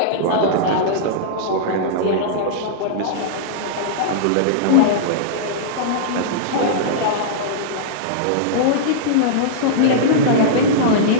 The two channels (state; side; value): different; both; correlation -0.02